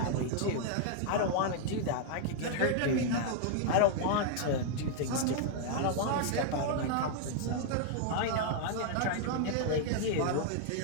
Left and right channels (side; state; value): both; different; correlation -0.01